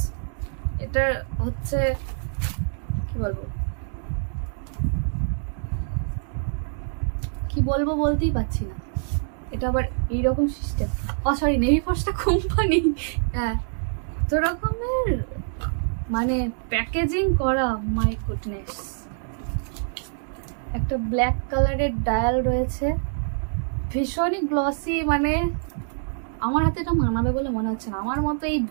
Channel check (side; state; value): left; silent; 61 dB below the other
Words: এটা হচ্ছে কি বলবো, কি বলবো বলতেই পারছি না। এটা আবার এইরকম সিস্টেম, সরি, নেভি ফোর্সটা কোম্পানি। হ্যাঁ, তো রকমের মানে প্যাকেজিং করা, মাই গুডনেস। একটা ব্ল্যাক কালারের ডায়াল রয়েছে, ভীষণই গ্লসি, মানে আমার হাতে এটা মানাবে বলে মনে হচ্ছে না, আমার মতো এই